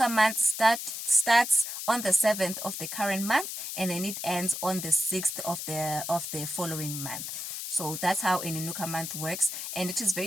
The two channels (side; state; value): left; noise; hiss, 6 dB below the sound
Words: month starts on the 7th of the current month, and then it ends on the 6th of the following month. So that's how an INUKA month works, and it is